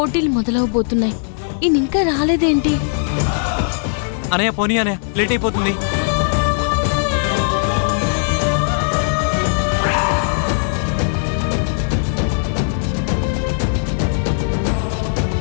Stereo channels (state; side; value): silent; right; digital silence